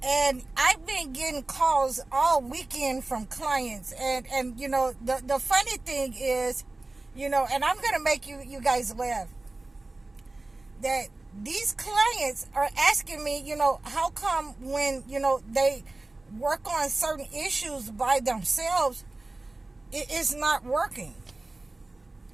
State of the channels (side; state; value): left; quieter; 3.0 dB